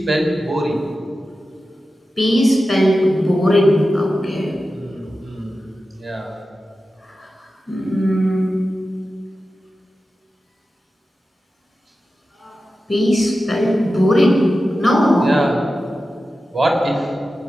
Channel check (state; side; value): normal; both; correlation 0.93